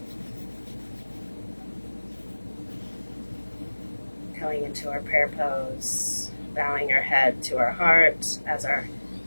Going into our prayer pose, bowing our head to our heart as our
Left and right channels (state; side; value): inverted; both; correlation -1.00